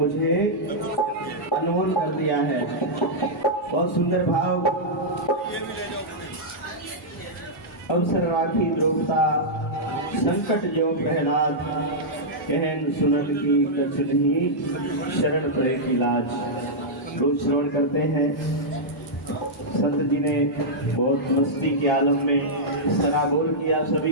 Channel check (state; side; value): normal; both; correlation -0.08